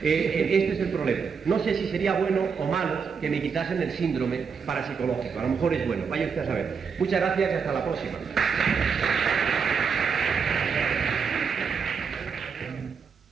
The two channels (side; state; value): left; quieter; 6.0 dB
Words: Este es el problema. No sé si sería bueno o malo que me quitasen el síndrome parapsicológico. A lo mejor es bueno, vaya usted a saber. Muchas gracias y hasta la próxima.